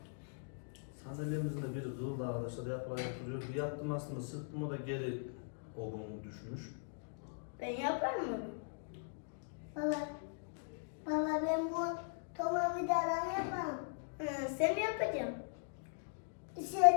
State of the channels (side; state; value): right; silent; digital silence